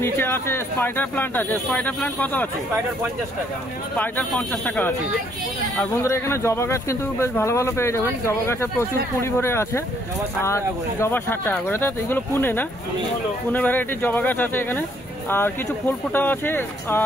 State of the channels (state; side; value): normal; both; correlation 0.67